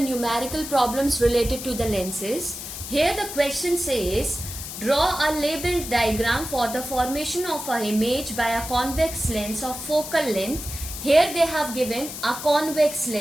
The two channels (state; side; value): noise; left; hiss, 9 dB below the sound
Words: numerical problems related to the lenses. Here the question says, draw a labeled diagram for the formation of an image by a convex lens of focal length. Here they have given a convex